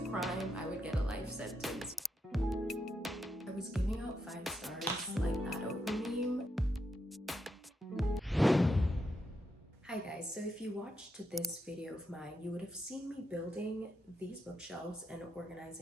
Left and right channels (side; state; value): both; normal; correlation 0.82